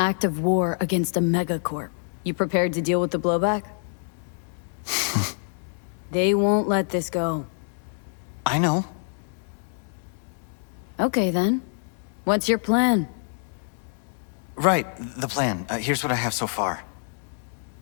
of war against a megacorp. You prepared to deal with the blowback? They won't let this go. I know. Okay, then. What's your plan? Right, the plan. Here's what I have so far.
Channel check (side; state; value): right; silent; digital silence